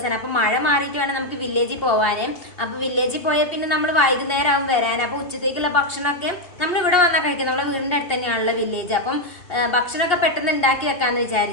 അപ്പം മഴ മാറിയിട്ട് വേണം നമുക്ക് വില്ലേജിൽ പോകാൻ. അപ്പം വില്ലേജിൽ പോയാൽ പിന്നെ നമ്മൾ വൈകുന്നേരം ആവും വരാൻ. അപ്പം ഉച്ചത്തേക്കുള്ള ഭക്ഷണമൊക്കെ നമ്മൾ ഇവിടെ വന്നാൽ കഴിക്കും. നമ്മളെ വീടിൻ്റെ അടുത്ത് തന്നെയാണല്ലോ വില്ലേജ്. അപ്പം ഭക്ഷണമൊക്കെ പെട്ടെന്ന് ഉണ്ടാക്കി വെക്കാന്ന്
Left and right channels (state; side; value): late; right; 2.7 ms